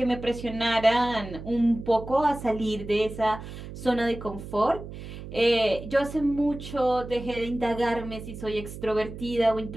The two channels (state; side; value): noise; right; hum, 11 dB below the sound